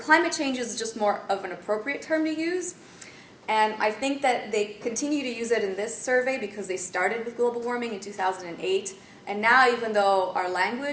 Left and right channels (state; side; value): identical; both; correlation 1.00